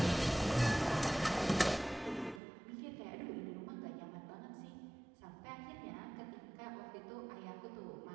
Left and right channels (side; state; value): left; drops out; at 2.4 s